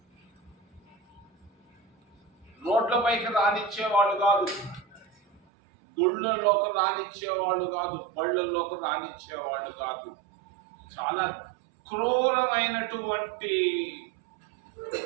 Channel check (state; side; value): drops out; left; at 5.4 s